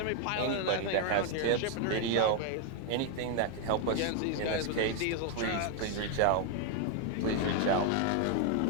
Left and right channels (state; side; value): different; both; correlation 0.01